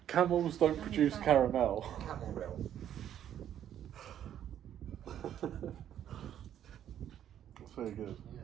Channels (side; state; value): left; quieter; 10.4 dB